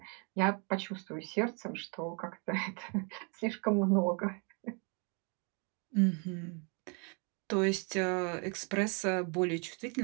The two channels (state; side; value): quieter; left; 35.9 dB